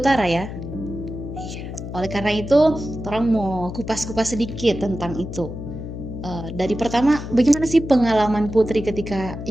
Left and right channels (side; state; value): left; noise; hum, 8 dB below the sound